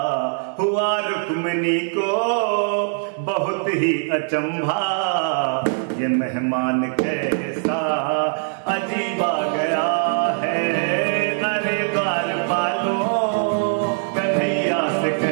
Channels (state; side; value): silent; left; digital silence